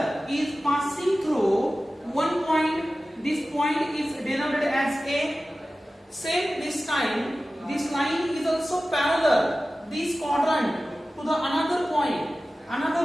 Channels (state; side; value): normal; both; correlation 0.96